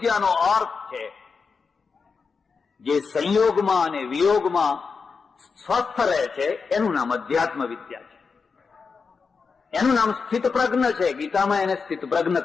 અર્થ છે જે સંયોગમાં અને વિયોગમાં સ્વસ્થ રહે છે, એનું નામ અધ્યાત્મ વિદ્યા છે. એનું નામ સ્થિત પ્રજ્ઞ છે. ગીતામાં એને સ્થિત પ્રજ્ઞ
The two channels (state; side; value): quieter; right; 5.1 dB